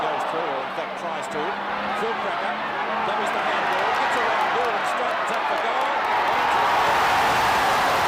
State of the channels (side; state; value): both; identical; correlation 1.00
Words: through, or in fact tries to. Phil Cracker, that was the handball. Gets around goal and straightens up the goal.